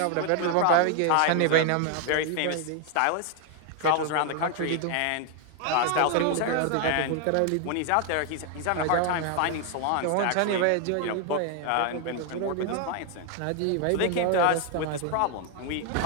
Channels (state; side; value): different; both; correlation 0.00